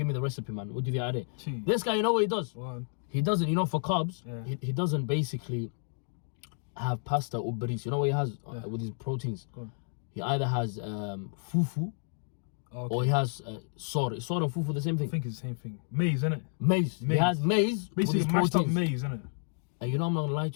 me the recipe, man. We'll do the idea. Jeez. This guy, you know what he does? He doesn't, you know, for carbs, he doesn't basically have pasta or bris. You know what he has with his proteins? He either has fufu, or he has sor. Sor and fufu the same thing? I think it's the same thing. Maize, isn't it? Maize. He has maize basically with his mashed proteins. up maize, isn't it? And you know, I'm not gonna lie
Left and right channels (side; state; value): right; silent; digital silence